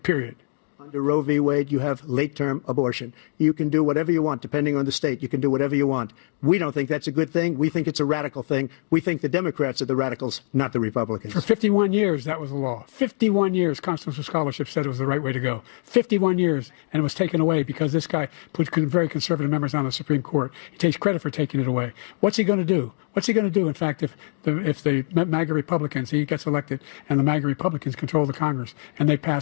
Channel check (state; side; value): silent; right; 63 dB below the other